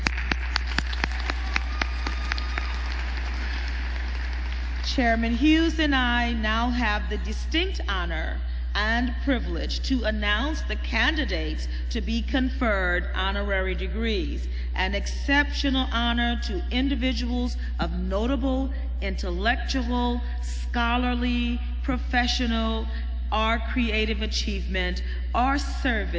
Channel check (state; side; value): identical; both; correlation 1.00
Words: Chairman Hughes and I now have the distinct honor and privilege to announce the candidates to be conferred honorary degrees, an exceptional honor to individuals of notable intellectual, scholarly, professional, or creative achievement or